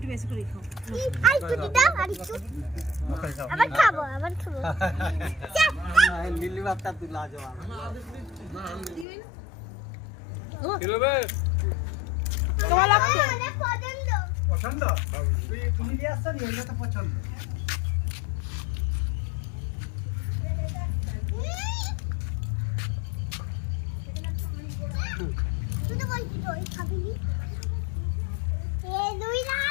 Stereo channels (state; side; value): drops out; right; at 9.1 s